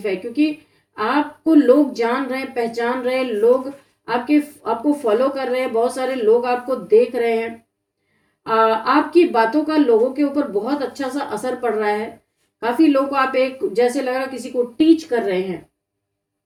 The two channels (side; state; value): both; identical; correlation 1.00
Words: है। क्योंकि आपको लोग जान रहे हैं, पहचान रहे हैं, लोग आपको फॉलो कर रहे हैं, बहुत सारे लोग आपको देख रहे हैं। आपकी बातों का लोगों के ऊपर बहुत अच्छा सा असर पड़ रहा है। काफी लोग को आप एक जैसे लग रहा किसी को टीच कर रहे हैं।